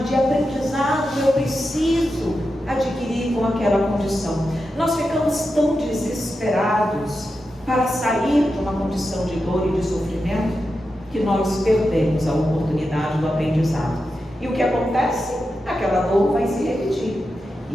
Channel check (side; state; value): both; normal; correlation 0.89